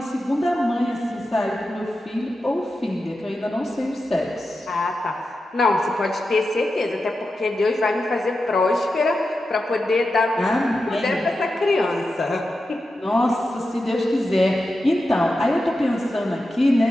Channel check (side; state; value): both; normal; correlation 0.90